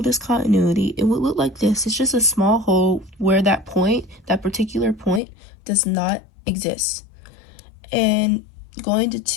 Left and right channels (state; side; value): drops out; right; at 5.2 s